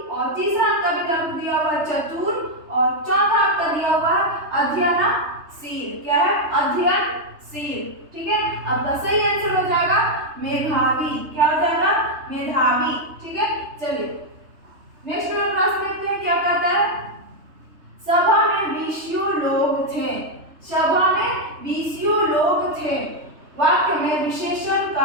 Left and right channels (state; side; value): late; left; 3.3 ms